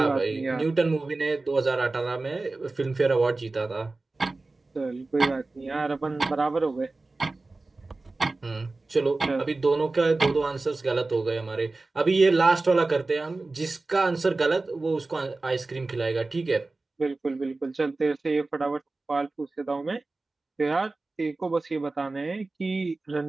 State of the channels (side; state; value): left; quieter; 3.4 dB